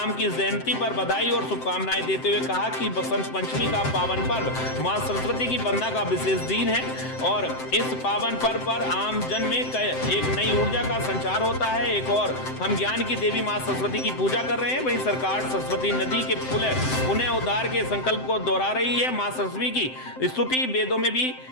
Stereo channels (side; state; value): right; late; 7.8 ms